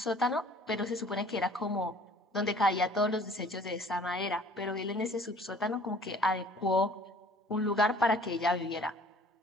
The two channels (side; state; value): both; normal; correlation 0.52